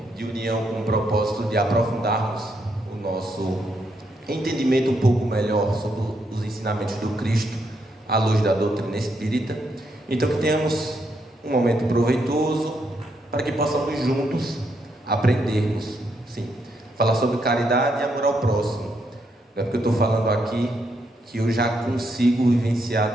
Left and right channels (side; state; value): both; normal; correlation 0.78